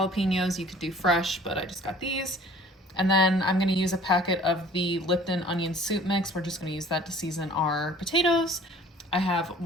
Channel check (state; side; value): normal; both; correlation 0.50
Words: You could do fresh, but I just got these. And then I'm gonna use a packet of the Lipton onion soup mix. We're just gonna use that to season our potatoes. I have